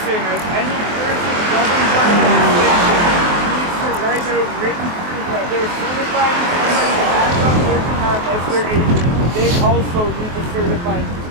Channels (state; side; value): late; left; 23 ms